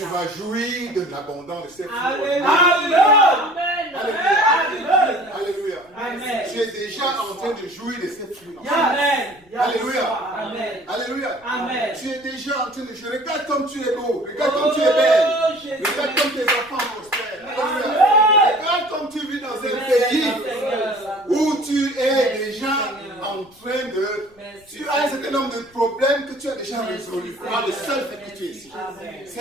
vas jouir de l'abondance de ces fruits. Alléluia. Alléluia. Alléluia. Amen. Tu es déjà en train de jouir de ces fruits. Amen. Alléluia. Amen. Alléluia. Amen. Tu es déjà en train de jouer. Regarde comme tu es beau. Regarde comme tu es belle. Oh, Jésus. Regarde comme tes enfants prospèrent. Alléluia. Amen. Regarde comme tu vis dans un Merci, pays Seigneur. où tu es déjà en train de... Merci. Tu as un certain nombre de problèmes que tu tu as déjà résolu par le seul fait que tu es ici. Amen.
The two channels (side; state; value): left; noise; rumble, 30 dB below the sound